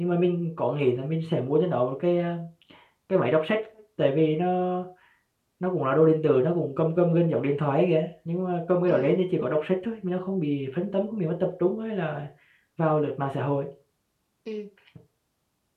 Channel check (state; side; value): identical; both; correlation 1.00